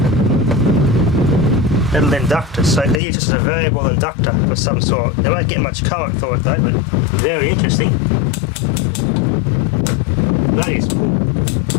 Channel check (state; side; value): drops out; right; at 3.0 s